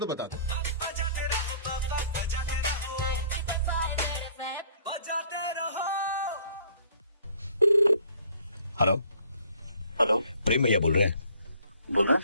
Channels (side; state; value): both; inverted; correlation -0.58